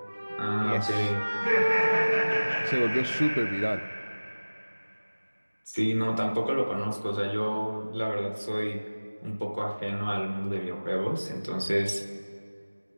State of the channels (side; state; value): both; inverted; correlation -1.00